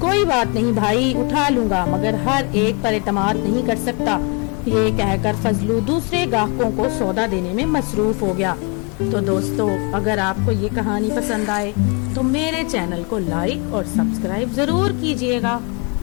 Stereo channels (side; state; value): right; quieter; 33.2 dB